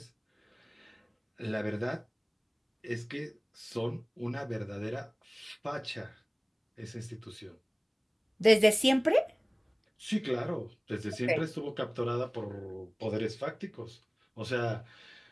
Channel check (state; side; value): identical; both; correlation 1.00